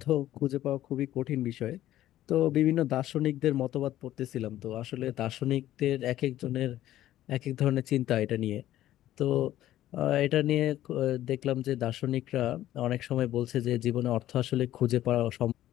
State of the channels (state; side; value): quieter; right; 13.5 dB